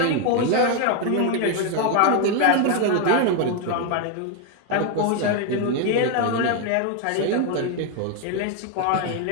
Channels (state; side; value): different; both; correlation 0.01